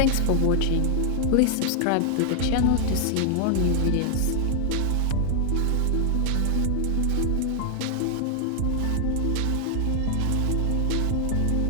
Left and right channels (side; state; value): both; different; correlation 0.00